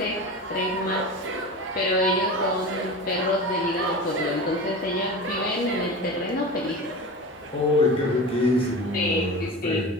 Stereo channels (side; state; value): both; normal; correlation 0.31